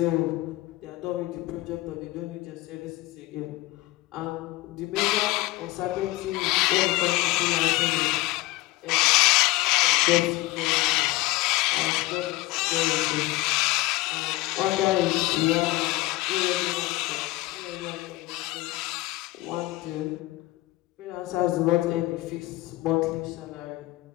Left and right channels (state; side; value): quieter; right; 19.6 dB